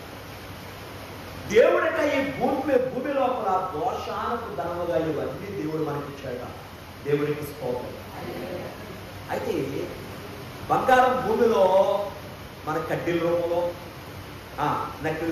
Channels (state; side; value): identical; both; correlation 1.00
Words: దేవుడట ఈ భూమి లోపల దోషానకు ధనముగా ఇవన్నీ దేవుడు మనకి ఇచ్చాడ. దేవుడికి స్తోత్రం. అయితే బంగారం భూమిలో మన కడ్డీల రూపంలో,